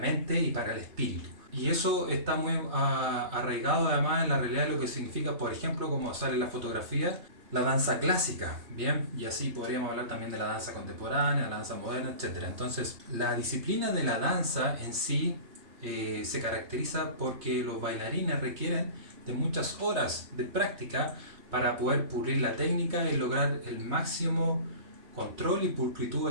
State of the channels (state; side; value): late; left; 3.3 ms